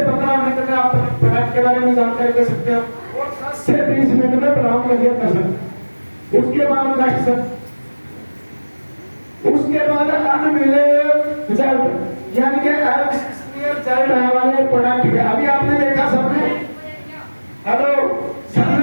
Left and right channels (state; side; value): inverted; both; correlation -1.00